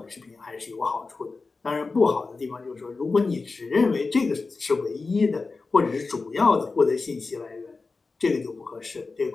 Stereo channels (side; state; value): right; quieter; 4.0 dB